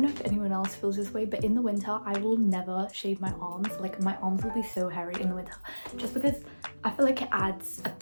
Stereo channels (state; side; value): inverted; both; correlation -1.00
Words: know if anyone else feels this way, but in the winter I will never shave my arms. Like my arms will be so hairy in the winter just because I feel like it adds a